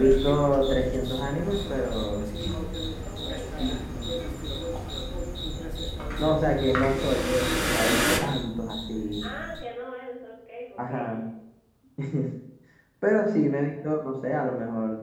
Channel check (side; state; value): both; identical; correlation 1.00